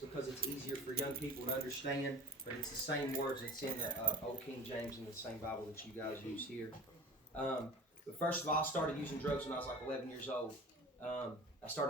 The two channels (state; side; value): normal; both; correlation 0.39